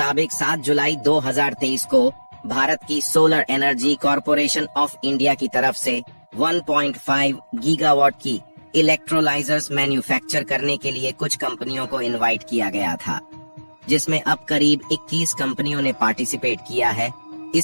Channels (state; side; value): inverted; both; correlation -1.00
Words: 7 जुलाई 2023 को भारत की solar energy corporation of India की तरफ से 1.5 गीगावाट की इलेक्ट्रोलाइजर्स मैन्युफैक्चर करने के लिए कुछ कंपनियों को इनवाइट किया गया था, जिसमें अब करीब 21 कंपनियों ने पार्टिसिपेट किया है।